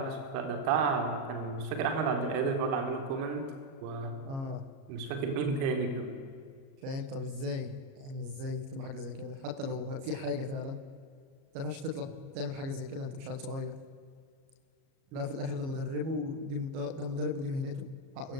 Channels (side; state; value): left; late; 37 ms